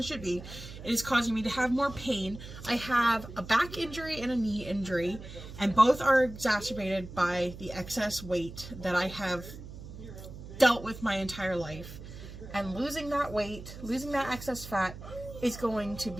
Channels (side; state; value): right; noise; hum, 13 dB below the sound